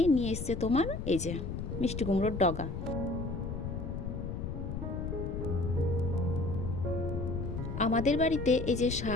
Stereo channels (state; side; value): noise; left; rumble, 4 dB below the sound